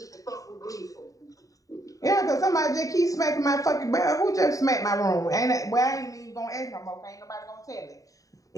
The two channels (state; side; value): late; right; 0.16 ms